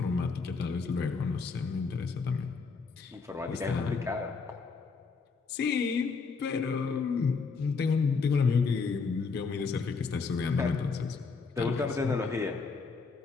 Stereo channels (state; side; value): quieter; right; 4.8 dB